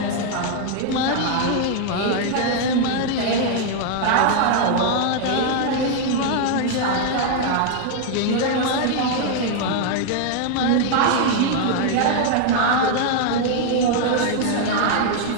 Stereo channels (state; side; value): different; both; correlation 0.00